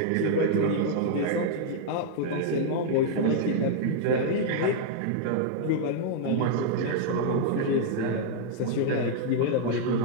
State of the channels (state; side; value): different; both; correlation -0.01